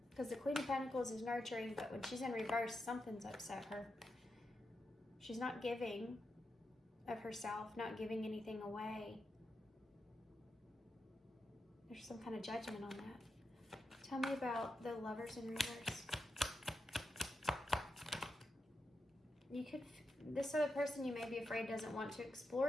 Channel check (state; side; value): normal; both; correlation 0.87